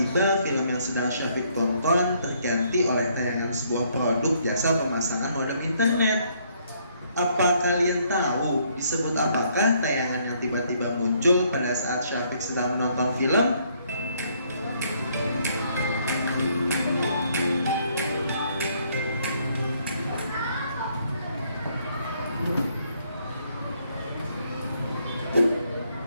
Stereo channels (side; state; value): both; inverted; correlation -0.68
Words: film yang sedang Syafiq tonton terganti oleh tayangan sebuah produk jasa pemasangan modem internet. Apa kalian tahu disebut apakah tayangan yang tiba-tiba muncul pada saat Syafiq sedang menonton film?